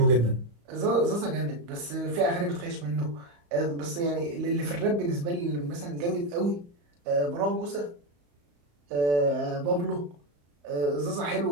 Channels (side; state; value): left; late; 35 ms